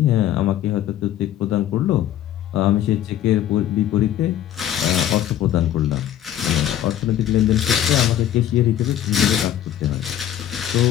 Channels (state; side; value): quieter; right; 11.4 dB